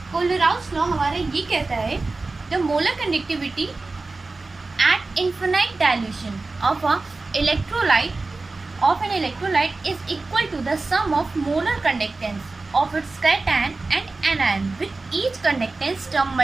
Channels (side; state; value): left; quieter; 3.5 dB